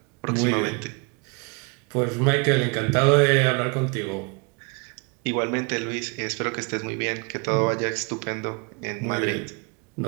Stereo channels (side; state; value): left; quieter; 31.8 dB